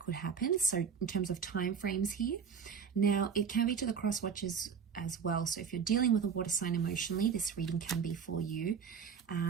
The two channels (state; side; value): quieter; left; 6.5 dB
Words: could happen. So in terms of time frames here. Now, it can be to the cross watchers as well. So if you're dealing with a water sign emotionally, this reading can be for you.